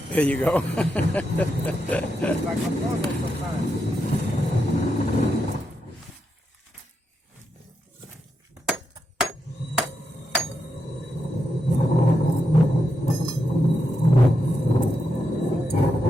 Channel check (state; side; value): normal; both; correlation 0.85